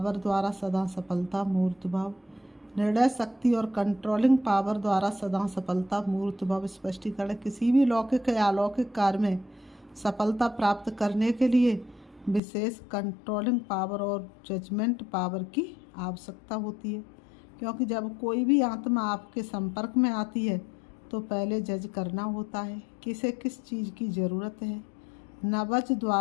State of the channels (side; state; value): right; drops out; at 12.4 s